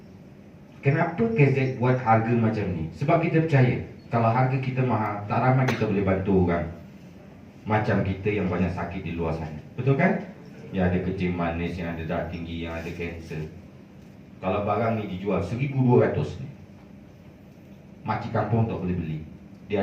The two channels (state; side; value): identical; both; correlation 1.00